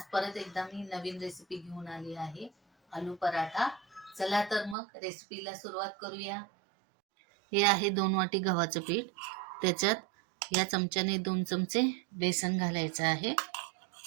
परत एकदा मी नवीन रेसिपी घेऊन आली आहे, आलू पराठा. चला तर मग रेसिपीला सुरुवात करूया. हे आहे 2 वाटी गव्हाचं पीठ. त्याच्यात या चमच्याने 2 चमचे बेसन घालायचं आहे.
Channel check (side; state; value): left; drops out; at 4.8 s